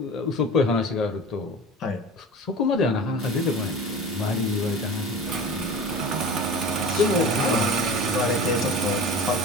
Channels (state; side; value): normal; both; correlation 0.34